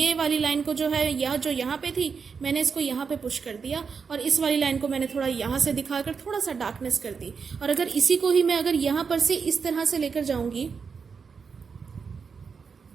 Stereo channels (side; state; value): left; quieter; 5.7 dB